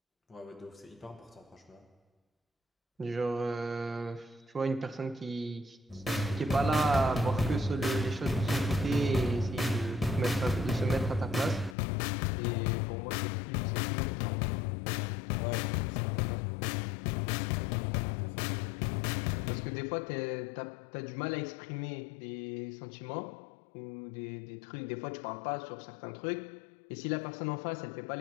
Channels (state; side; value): drops out; right; at 11.8 s